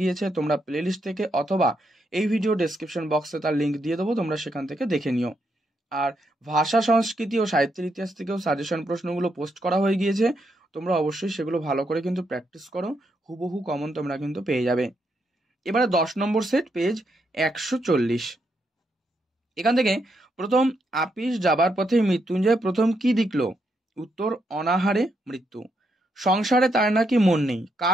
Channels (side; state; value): both; normal; correlation 0.79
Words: গিয়েছে। তোমরা প্লেলিস্ট থেকে অথবা এই ভিডিও ডেসক্রিপশন বক্সে তার লিঙ্ক দিয়ে দেবো, তোমরা সেখান থেকে দেখে নিও। আর ভাষা, সংস্কৃতি ও সাহিত্যের ইতিহাস থেকেও সাজেশন প্রশ্নগুলো পোস্ট করা হয়ে গিয়েছে, তোমরা অবশ্যই সেগুলো ভালো করে কিন্তু প্র্যাকটিস করো, হুবহু কমন তোমরা কিন্তু পেয়ে যাবে। এবারে 10 নম্বর সেট, পেজ 140। এখান থেকে প্রথম, আপিস যাবার পথে মৃত্যুঞ্জয় প্রথম কি দেখল? উত্তর, অনাহারে মৃত্যু। সংসারে তার নাকি মন নেই,